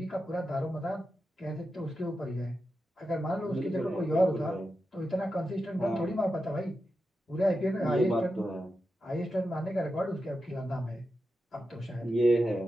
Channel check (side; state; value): both; normal; correlation 0.89